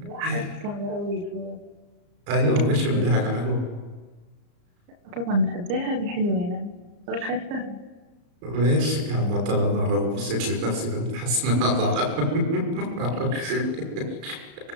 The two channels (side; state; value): left; late; 34 ms